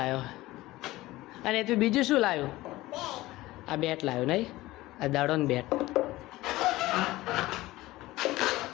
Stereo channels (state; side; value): quieter; right; 18.1 dB